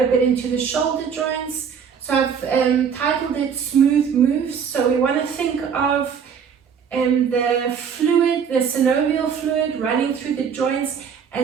a bit into the shoulder joints. So I've titled it Smooth Moves. So we want to think of the fluid, the synovial fluid running through the joints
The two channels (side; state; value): left; quieter; 7.1 dB